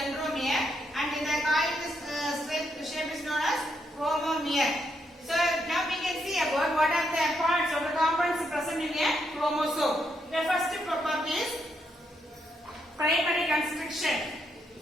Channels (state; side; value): normal; both; correlation 0.78